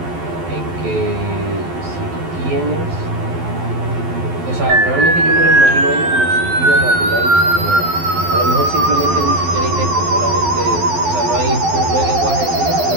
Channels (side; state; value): left; late; 12 ms